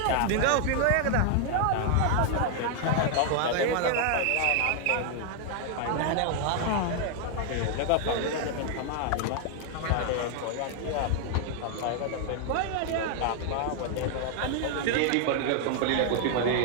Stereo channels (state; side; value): different; both; correlation 0.00